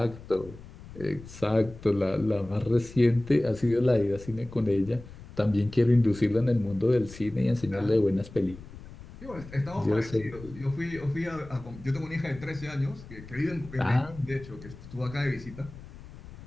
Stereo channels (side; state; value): left; noise; rumble, 17 dB below the sound